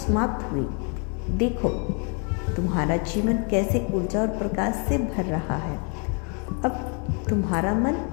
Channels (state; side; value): quieter; right; 37.8 dB